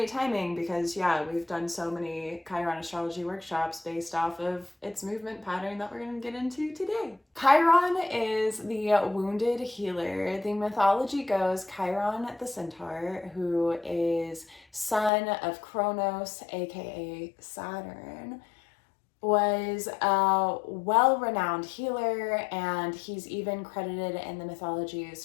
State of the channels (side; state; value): right; drops out; at 15.1 s